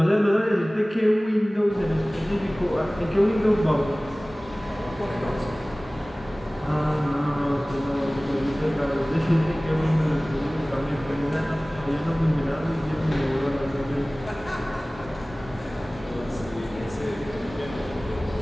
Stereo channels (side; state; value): both; normal; correlation 0.98